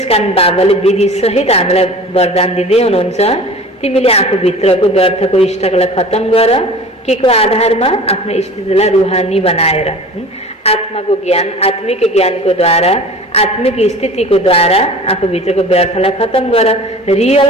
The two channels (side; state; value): both; normal; correlation 0.41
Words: बाबाले विधि सहित हामीलाई वरदान दिँदै हुनुहुन्छ, तिमीले आफूभित्रको व्यर्थको स्टकलाई खत्म गर। के को आधारमा? आफ्नो स्थितिलाई रूहानी बनाएर, आत्माको ज्ञान, आत्मिक ज्ञानको द्वारा, आत्मिक स्थितिको द्वारा आफूभित्रको व्यर्थलाई खत्म गर।